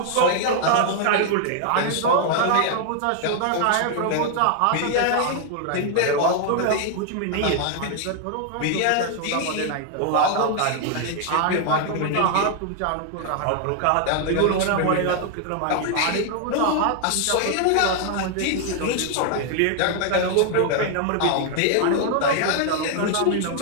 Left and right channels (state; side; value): different; both; correlation 0.00